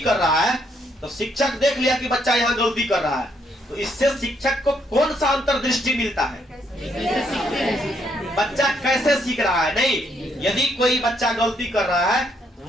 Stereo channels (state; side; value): normal; both; correlation 0.72